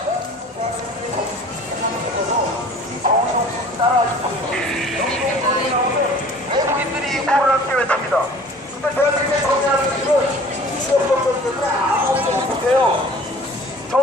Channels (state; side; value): normal; both; correlation 0.47